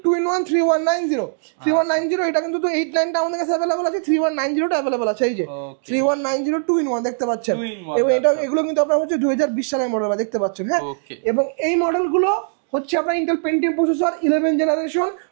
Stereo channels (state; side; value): silent; left; digital silence